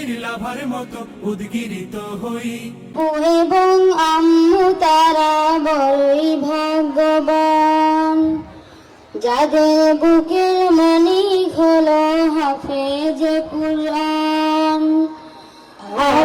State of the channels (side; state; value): both; identical; correlation 1.00